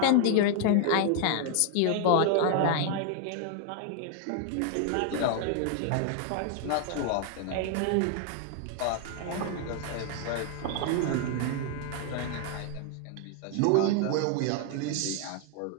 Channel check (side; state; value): both; different; correlation 0.00